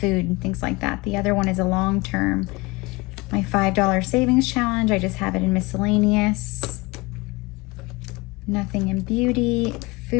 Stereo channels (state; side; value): quieter; right; 24.1 dB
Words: and things like that. The other one is a long-term. My $5 savings challenge, I just have it in miscellaneous. Nothing in beauty.